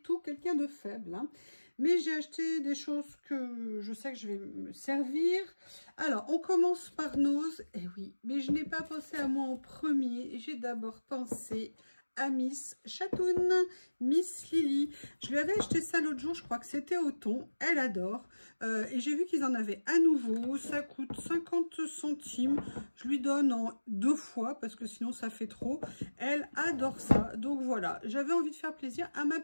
quelqu'un de faible. Hein. Mais j'ai acheté des choses que je sais que je vais me servir. Alors, on commence par Nose. Eh oui, mais je n'ai pas pensé à moi en premier. J'ai d'abord pensé à Miss Chatoun, Miss Lily. Je lui avais acheté ça l'autre jour, je crois que c'était au thon. Elle adore. Et j'ai vu qu'ils en avaient à nouveau. Ça coûte 50 centimes. Je lui donne en 2 fois parce que sinon ça fait trop. Elle adore ça. Donc voilà, j'avais envie de faire plaisir à ma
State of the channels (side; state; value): both; inverted; correlation -1.00